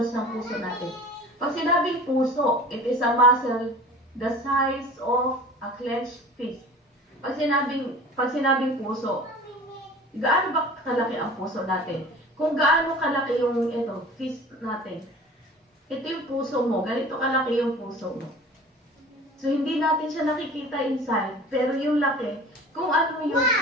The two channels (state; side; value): normal; both; correlation 0.42